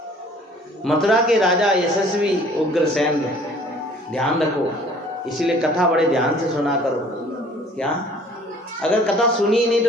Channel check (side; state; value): both; normal; correlation 0.53